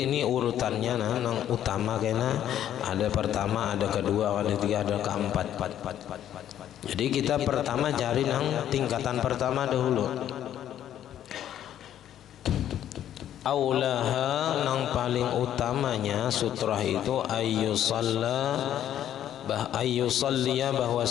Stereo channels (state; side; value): quieter; right; 11.0 dB